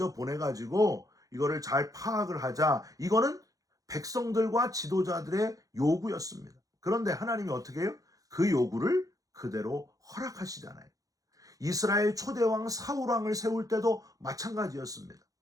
보내가지고 이거를 잘 파악을 하자, 이거는 백성들과 지도자들의 요구였습니다. 그런데 하나님이 어떻게 해요? 그 요구를 그대로 허락하시잖아요. 이스라엘 초대왕 사울왕을 세울 때도 마찬가지였습니다.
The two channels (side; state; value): left; late; 0.17 ms